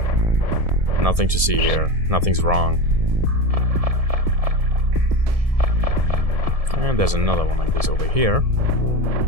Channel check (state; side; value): late; left; 1.7 ms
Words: Nothing to see here. Nothing's wrong. And there's another one like this over here.